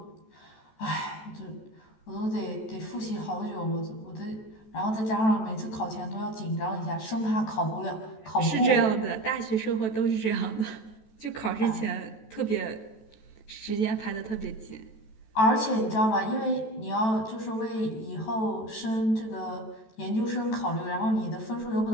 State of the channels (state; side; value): late; right; 14 ms